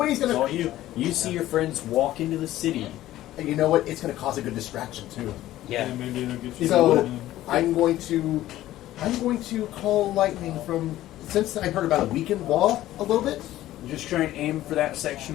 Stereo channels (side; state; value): right; quieter; 14.5 dB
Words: gonna- It's all you. You see your friends walk into the city. And you know what? It's going to cause a good distraction too. Yeah. Maybe it'll get you. So I'm going to call lightning from. Since I heard about a weakened wall a little bit. Just try and aim for that